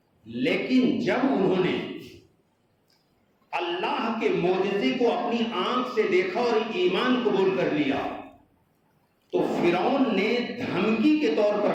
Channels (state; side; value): identical; both; correlation 1.00